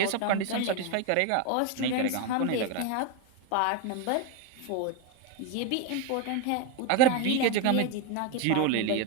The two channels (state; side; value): different; both; correlation 0.02